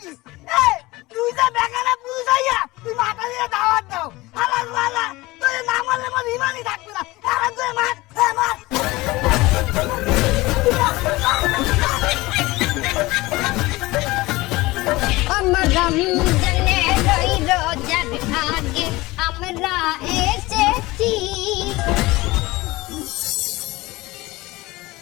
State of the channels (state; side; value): quieter; right; 20.6 dB